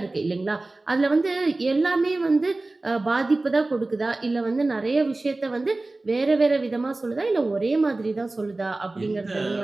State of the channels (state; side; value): quieter; left; 3.1 dB